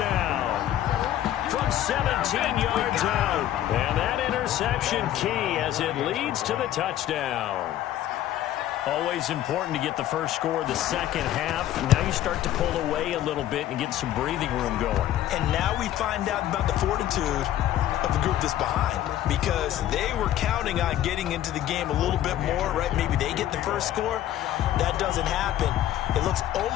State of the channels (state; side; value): quieter; right; 12.5 dB